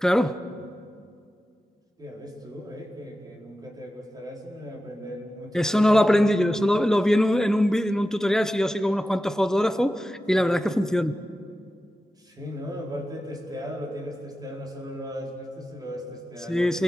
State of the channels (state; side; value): normal; both; correlation 0.93